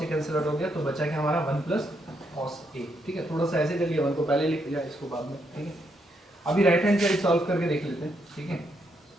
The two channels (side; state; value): both; normal; correlation 0.77